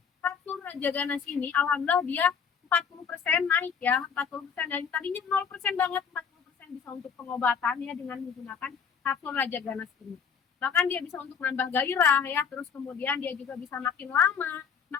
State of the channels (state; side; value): quieter; right; 6.8 dB